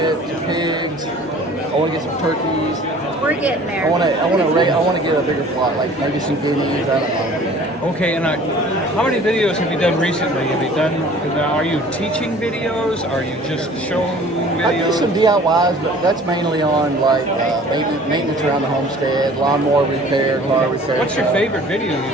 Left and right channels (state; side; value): normal; both; correlation 0.49